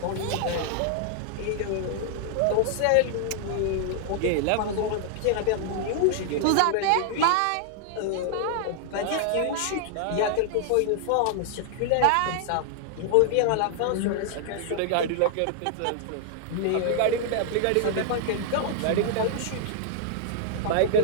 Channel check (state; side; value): different; both; correlation -0.01